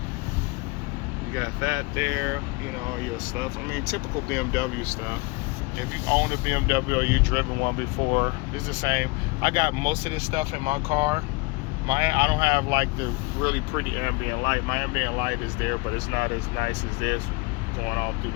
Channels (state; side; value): quieter; right; 25.8 dB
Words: You got that there. You know, all your stuff. I mean, typical BMW stuff. If you own a BMW or you've driven one before, it's the same. I got most of this stuff in my car. I don't have like the really pretty ambient light. My ambient light is there, but it's not as nice as this going all through